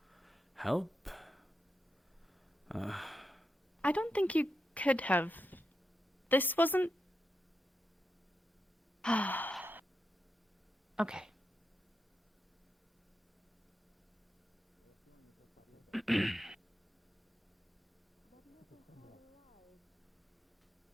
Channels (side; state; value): both; normal; correlation 0.86